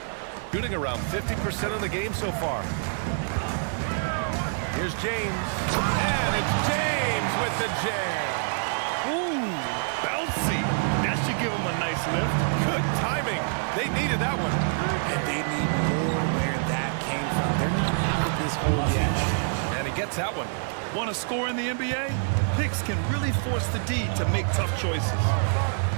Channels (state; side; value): silent; left; digital silence